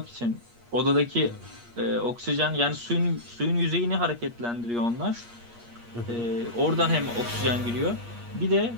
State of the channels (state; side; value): late; left; 8.5 ms